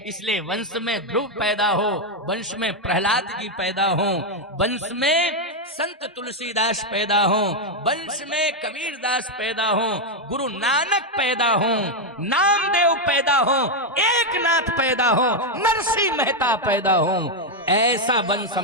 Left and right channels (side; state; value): both; normal; correlation 0.03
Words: इसलिए वंश में ध्रुव पैदा हो, वंश में प्रहलाद जी पैदा हो, वंश में संत तुलसीदास पैदा हो, वंश में कबीरदास पैदा हो, गुरु नानक पैदा हो, नामदेव पैदा हो, एकनाथ पैदा हो, नरसिंह मेहता पैदा हो। ऐसा वंश